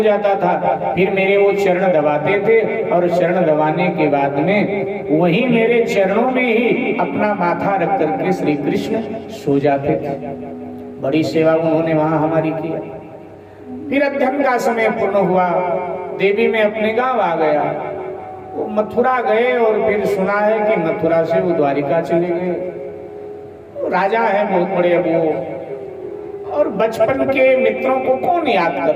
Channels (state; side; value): identical; both; correlation 1.00